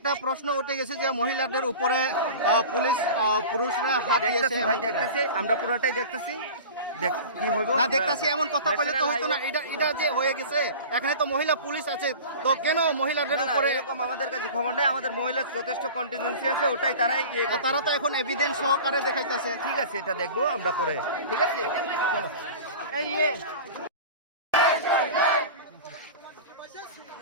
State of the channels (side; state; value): both; inverted; correlation -0.36